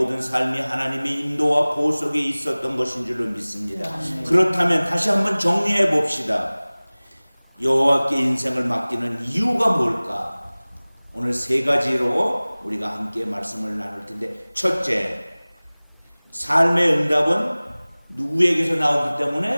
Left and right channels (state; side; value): inverted; both; correlation -1.00